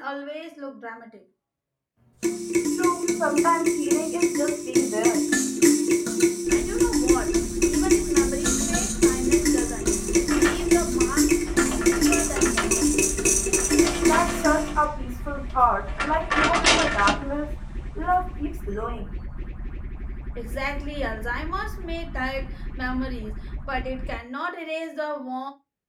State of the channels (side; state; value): both; identical; correlation 1.00